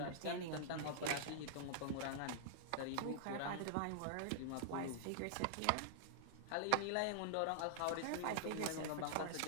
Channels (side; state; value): both; different; correlation -0.01